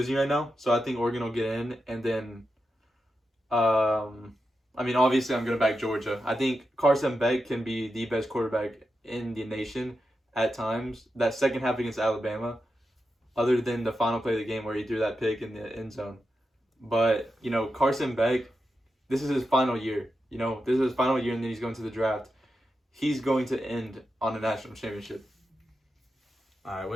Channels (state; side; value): normal; both; correlation 0.88